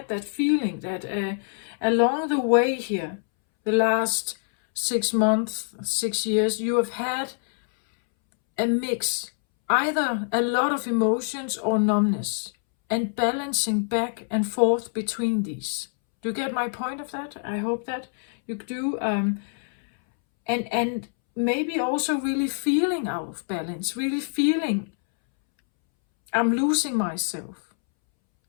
that feeling that along the way here, the last 6 months, 6 years, you have had a mix either a lot of emotions or numbness, and balancing back and forth between these. Do you get my point of that? I hope that you do. And maybe also really feeling out of balance, really feeling I'm losing myself.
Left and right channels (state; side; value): silent; right; 62 dB below the other